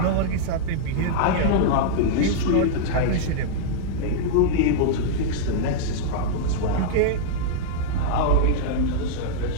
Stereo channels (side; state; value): both; different; correlation -0.02